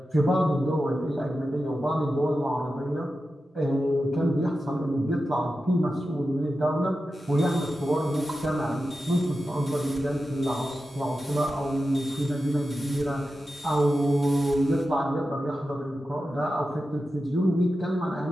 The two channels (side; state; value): both; normal; correlation 0.92